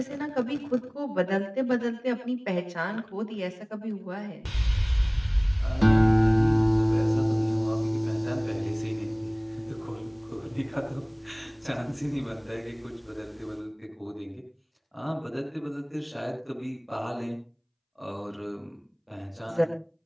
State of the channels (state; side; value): identical; both; correlation 1.00